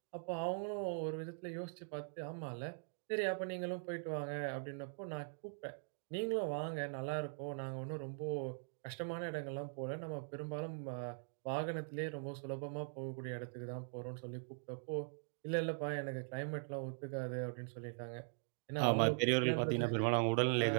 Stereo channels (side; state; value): left; silent; digital silence